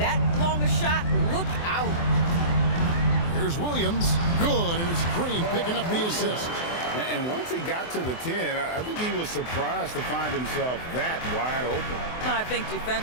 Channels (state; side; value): late; right; 24 ms